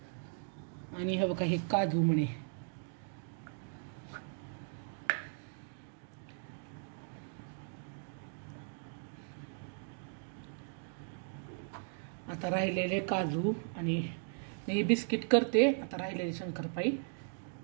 हे बघा, हे काजू म्हणे। आता राहिलेले काजू आणि मी बिस्किट करते. आता राहिलेली शंकरपाई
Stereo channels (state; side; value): silent; left; digital silence